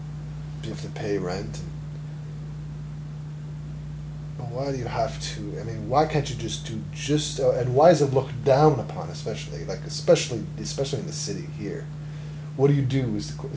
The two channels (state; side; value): identical; both; correlation 1.00